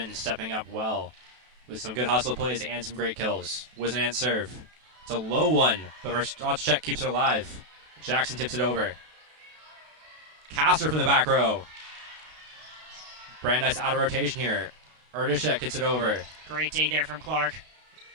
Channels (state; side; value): late; left; 32 ms